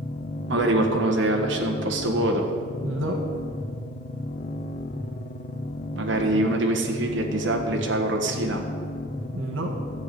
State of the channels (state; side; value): normal; both; correlation 0.40